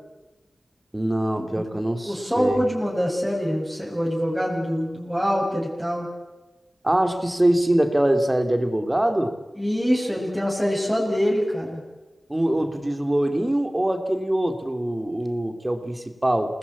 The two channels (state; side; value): normal; both; correlation 0.98